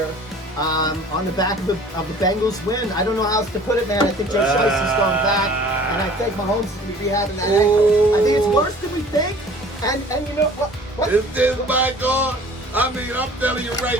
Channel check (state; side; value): normal; both; correlation 0.49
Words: on the back of the Bengals win. I don't know how else to put it, man. I think Joe Shiesty's going back, and I think Mahomes is going to be having that ankle. I think it's worse than we think. And you know what? This my God. I mean, I'm telling you